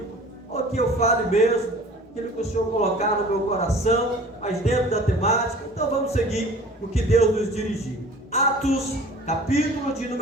ou que eu fale mesmo aquilo que o Senhor colocar no meu coração, mas dentro da temática. Então vamos seguir o que Deus nos dirigiu. Atos, capítulo de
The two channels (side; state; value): both; normal; correlation 0.45